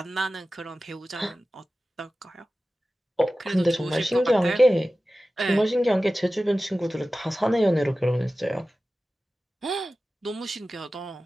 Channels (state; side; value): normal; both; correlation 0.95